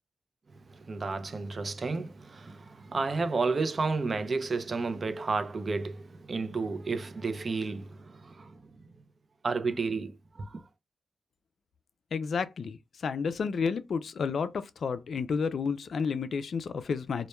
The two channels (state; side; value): normal; both; correlation 0.84